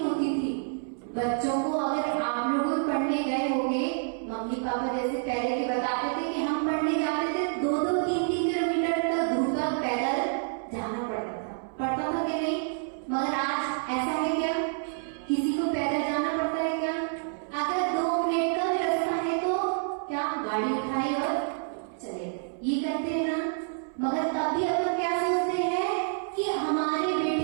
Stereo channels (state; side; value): silent; left; 59 dB below the other